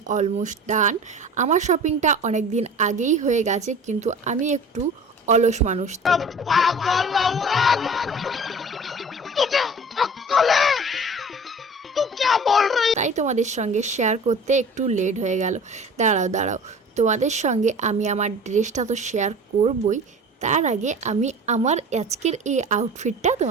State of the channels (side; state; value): both; normal; correlation 0.41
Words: অলমোস্ট ডান। আমার শপিংটা অনেক দিন আগেই হয়ে গেছে, কিন্তু আমি একটু অলস মানুষ, তাই তোমাদের সঙ্গে শেয়ার করতে একটু লেট হয়ে গেল। দাঁড়াও, তোমাদের সঙ্গে আমি আমার ড্রেসটা তো শেয়ার করবই, তার আগে আমি আমার আজকের এই আউটফিটটা